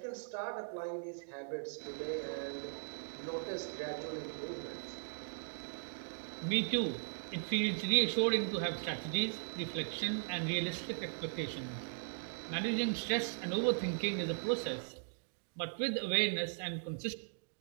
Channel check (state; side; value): silent; left; digital silence